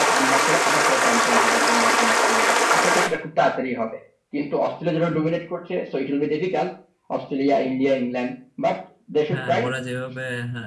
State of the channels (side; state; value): both; identical; correlation 1.00